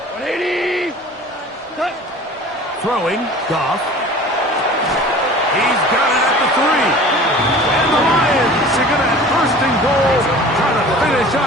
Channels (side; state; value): both; normal; correlation 0.42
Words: Throwing, Goff. He's got it at the 3. And the Lions are going to have first and goal, trying to finish